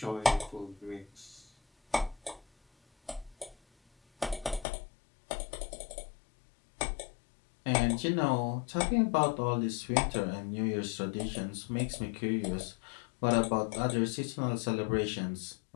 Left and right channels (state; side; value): drops out; right; at 4.7 s